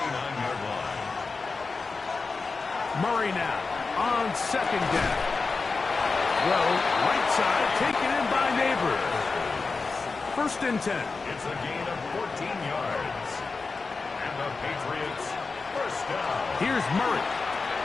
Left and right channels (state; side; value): quieter; right; 4.2 dB